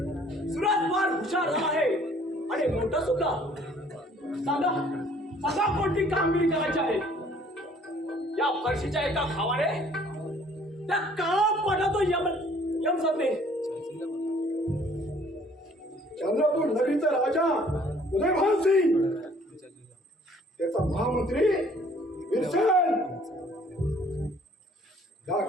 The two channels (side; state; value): both; normal; correlation 0.58